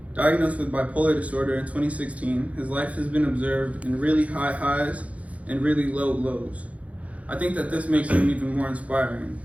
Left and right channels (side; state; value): left; late; 0.066 ms